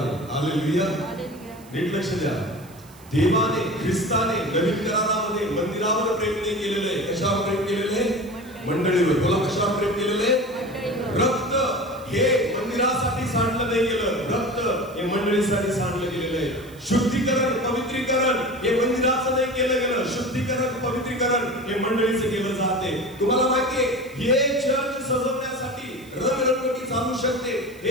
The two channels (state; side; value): noise; right; hiss, 25 dB below the sound